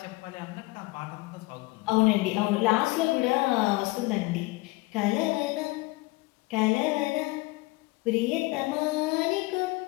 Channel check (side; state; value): right; quieter; 22.7 dB